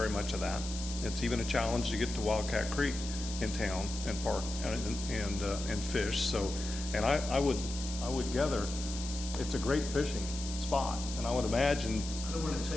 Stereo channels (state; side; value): noise; left; hiss, 9 dB below the sound